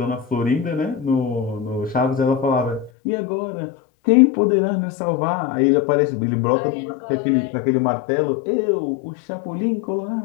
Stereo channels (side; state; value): right; drops out; at 2.9 s